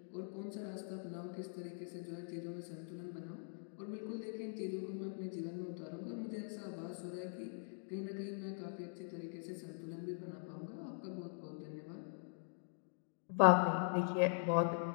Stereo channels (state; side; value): silent; right; digital silence